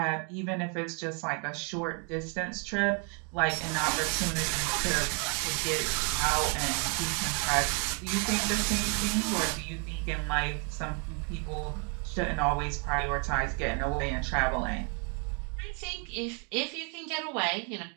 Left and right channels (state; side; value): quieter; left; 38.1 dB